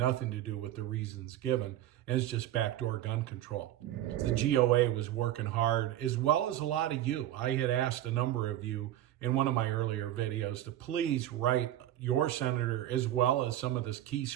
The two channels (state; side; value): quieter; left; 13.0 dB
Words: to do with the reasons given, and it's just backdoor gun control. The GOA was working hard, as well as a lot of you. I had asked a number of you in one of my earlier videos to please write your senator, as well as some of the key